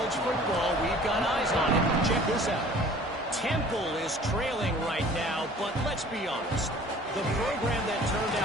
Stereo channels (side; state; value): both; normal; correlation 0.49